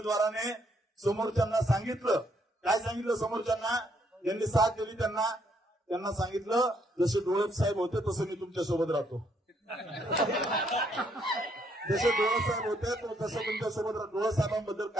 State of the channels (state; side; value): normal; both; correlation 0.71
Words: समोरच्यांना सांगितलं, काय सांगितलं समोरच्यांना, ज्यांनी साथ दिली त्यांना सांगितलं, जसे डोळप साहेब होते तसं मी तुमच्या सोबत राहतो, जसे डोळप साहेब होते तसं तुमच्या सोबत राहतो. डोळप साहेबांबद्दल